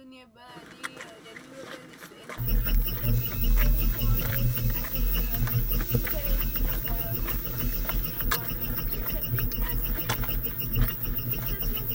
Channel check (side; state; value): both; identical; correlation 1.00